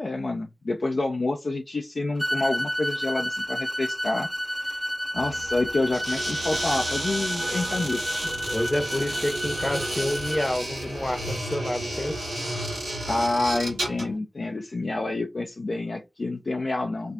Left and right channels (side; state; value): both; normal; correlation 0.96